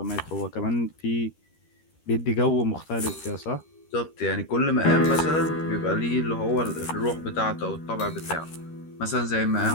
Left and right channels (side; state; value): right; late; 13 ms